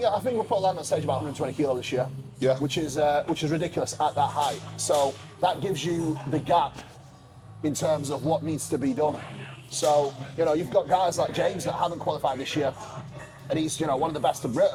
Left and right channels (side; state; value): both; identical; correlation 1.00